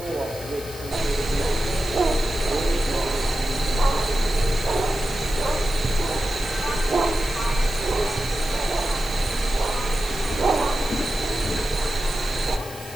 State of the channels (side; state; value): right; noise; hiss, 16 dB below the sound